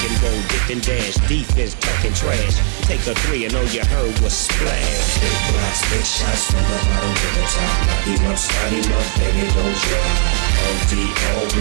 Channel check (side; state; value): left; silent; 61 dB below the other